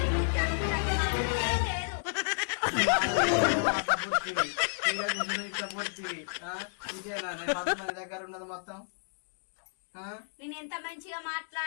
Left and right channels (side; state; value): right; silent; digital silence